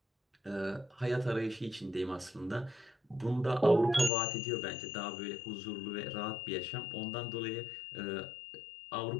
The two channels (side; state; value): right; drops out; at 4.1 s